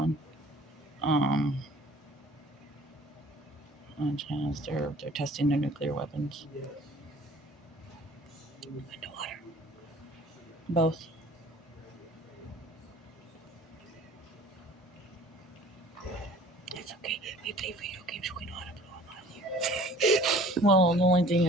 and China's they're testing their nuclear weapons. Underwater. Both. That's okay. We play video games. We know how to blow them out of here. Well, the only thing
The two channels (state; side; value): normal; both; correlation 0.50